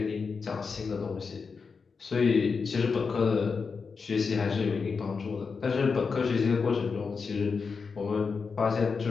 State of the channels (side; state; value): right; quieter; 5.1 dB